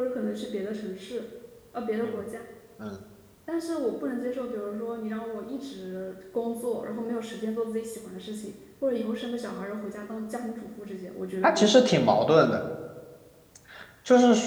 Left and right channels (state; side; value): identical; both; correlation 1.00